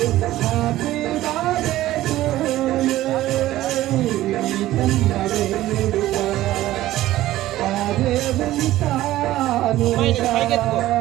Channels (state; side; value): quieter; left; 15.2 dB